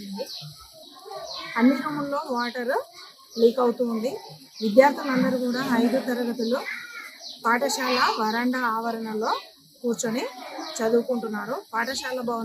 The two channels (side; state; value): both; identical; correlation 1.00